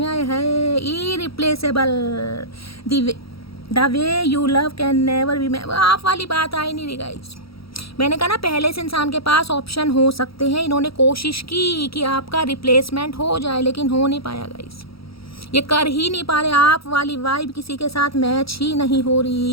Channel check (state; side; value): late; right; 0.75 ms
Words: है irreplaceable, the way you love can never be. आप वाली बात आई नहीं रही गाइस। मैंने कहा ना पहले से इंसान के पास ऑप्शन हो सकते हैं, इन्होंने कोशिश की कि आपका रिप्लेसमेंट हो जाए, लेकिन हो नहीं पाया गाइस, ये कर ही नहीं पा रहे। आप वाली वाइब किसी के साथ मैच ही नहीं हो